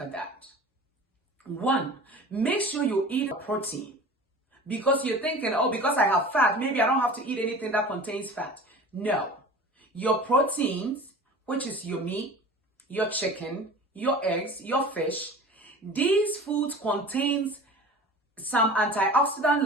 at that. 1, make sure you eat a protein. Because you're thinking, because I have fat, maybe I don't have to eat anything that contains fat. No. Your proteins, which is your meat, your chicken, your eggs, your fish, these foods contains some antioxidant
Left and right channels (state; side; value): normal; both; correlation 0.39